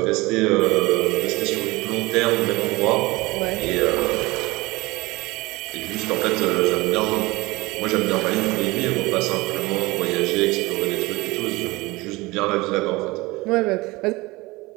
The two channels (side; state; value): left; quieter; 22.1 dB